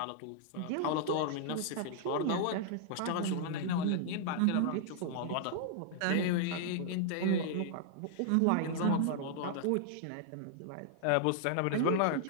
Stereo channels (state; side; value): different; both; correlation -0.01